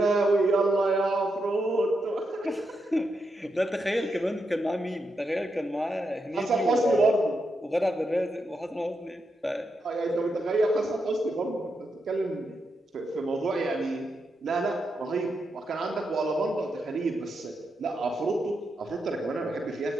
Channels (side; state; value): both; normal; correlation 0.84